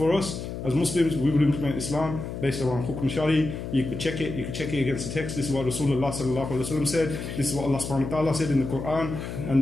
us, as Muslims, we would implement Islam based around Hukum Shari. You could check it against the text. This is what Rasulullah sallallahu alaihi wasallam said. This is what Allah subhanahu wa ta'ala said in the Quran. And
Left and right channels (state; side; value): noise; left; hum, 7 dB below the sound